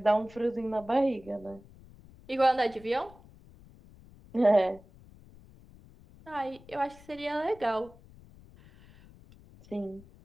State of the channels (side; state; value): left; noise; rumble, 23 dB below the sound